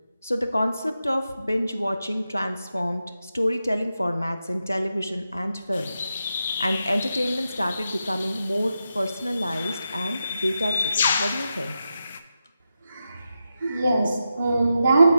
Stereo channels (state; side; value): inverted; both; correlation -0.88